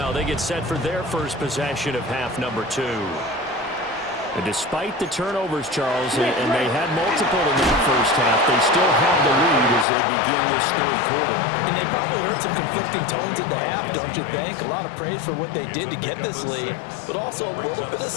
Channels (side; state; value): right; drops out; at 9.9 s